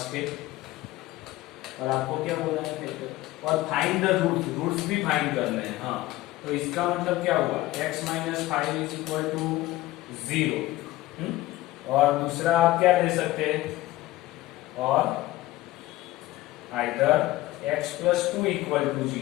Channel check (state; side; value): quieter; right; 17.3 dB